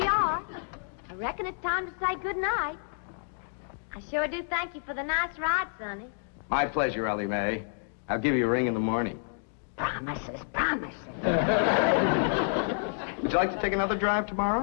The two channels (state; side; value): silent; right; digital silence